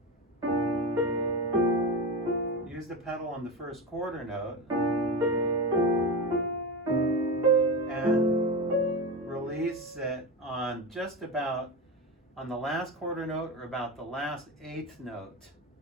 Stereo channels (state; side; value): normal; both; correlation 0.21